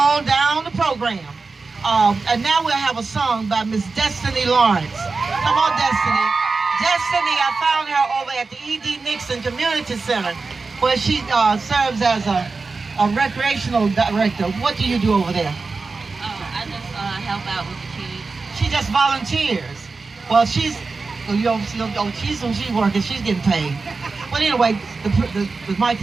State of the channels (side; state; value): left; quieter; 4.1 dB